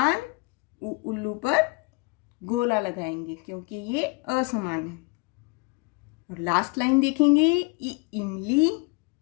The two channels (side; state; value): right; quieter; 27.8 dB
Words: उल्लू पर गोला लगाएंगे क्योंकि ये असमान है। और लास्ट लाइन देखेंगे, इमली,